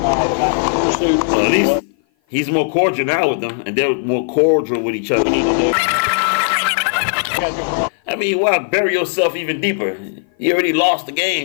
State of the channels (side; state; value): right; silent; 56 dB below the other